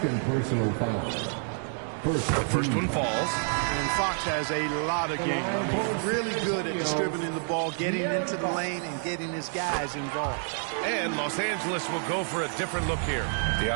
personal foul. First one falls. And Fox has a lot of game. He's really good at distributing the ball, getting into the lane, and getting his guys involved. And Los Angeles will go for a different look here.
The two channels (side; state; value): left; silent; 59 dB below the other